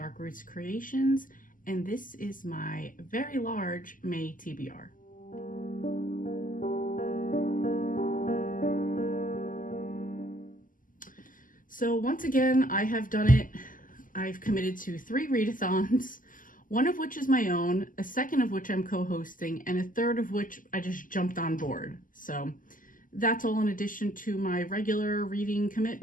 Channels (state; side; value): late; right; 0.39 ms